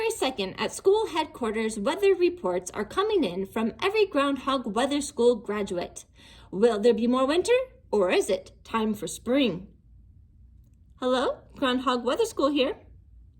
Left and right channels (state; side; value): identical; both; correlation 1.00